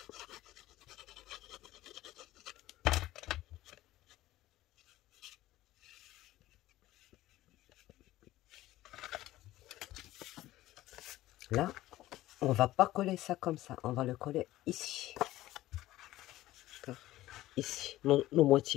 Là, on va pas coller ça comme ça. On va le coller ici. Ici, nos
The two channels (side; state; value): right; quieter; 15.8 dB